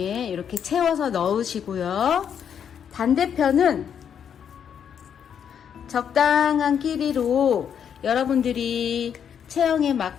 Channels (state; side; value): quieter; right; 8.2 dB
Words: 이렇게 채워서 넣으시고요. 반대편은 적당한 길이로 여러분들이 체형에